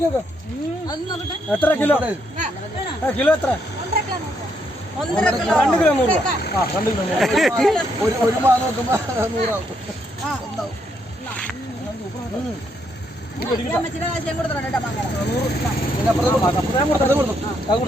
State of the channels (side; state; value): both; normal; correlation 0.75